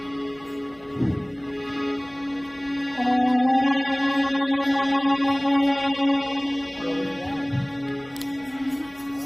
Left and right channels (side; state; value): left; noise; hum, 30 dB below the sound